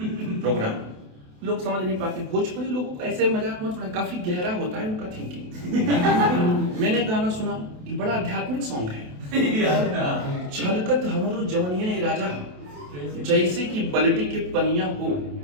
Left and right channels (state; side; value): late; left; 28 ms